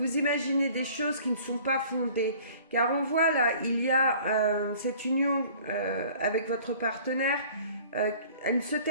imaginez des choses qui ne sont pas fondées. Car on voit là, il y a cette union avec votre partenaire, elle ne se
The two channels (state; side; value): inverted; both; correlation -0.50